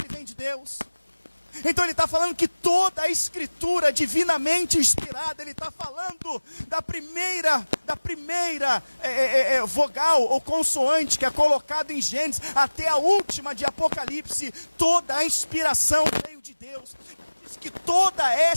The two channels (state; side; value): inverted; both; correlation -1.00